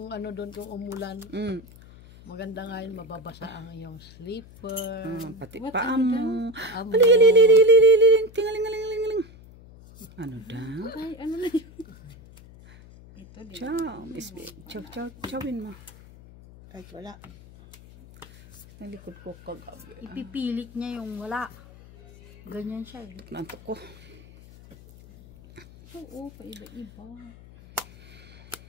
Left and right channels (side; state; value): left; noise; hum, 20 dB below the sound